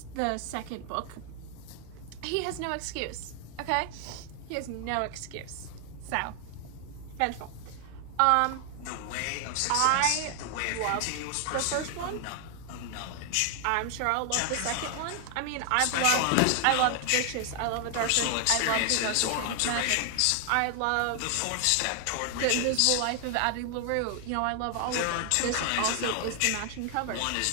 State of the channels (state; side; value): different; both; correlation 0.00